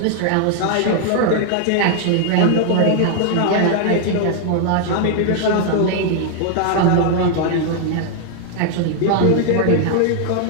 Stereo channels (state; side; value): different; both; correlation 0.00